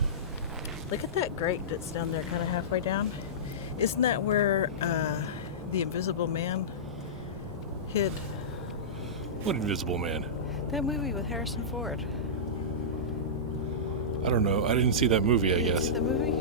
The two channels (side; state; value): both; normal; correlation -0.18